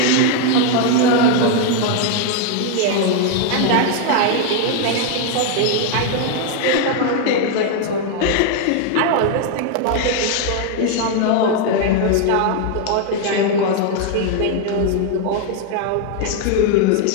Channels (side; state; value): both; different; correlation 0.01